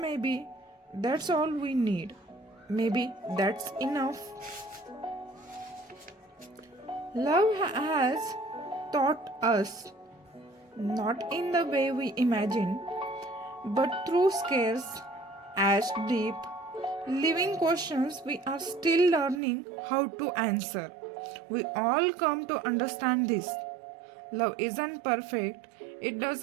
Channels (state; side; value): drops out; left; at 19.4 s